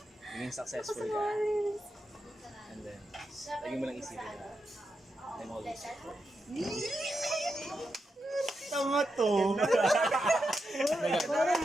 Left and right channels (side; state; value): both; normal; correlation 0.87